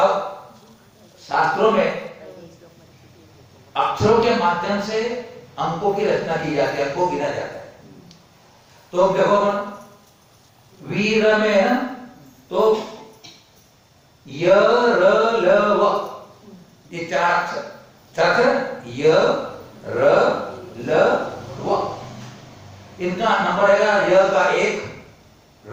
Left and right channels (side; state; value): both; identical; correlation 1.00